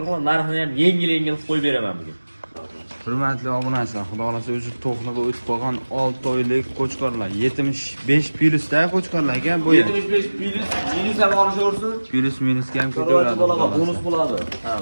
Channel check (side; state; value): both; inverted; correlation -1.00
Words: narxini ham yengil qo'yib beraman bugun. Hurmatli obunachilar, xudo xolasa o'zi to'qliga o'tib qolgan 6 oylik qo'chqorlar, 75 plyusda qo'chqorlar ekan bu. 75 plyus, minus ham olishaversin. Plyus minusga ham Chorvachi ketaveradi. bolaga bonus bo'ladi. Ha.